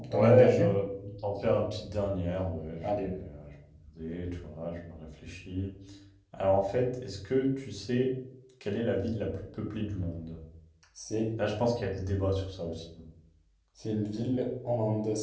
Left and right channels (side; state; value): both; identical; correlation 1.00